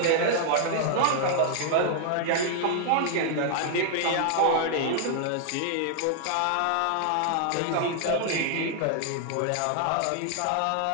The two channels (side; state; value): both; different; correlation 0.00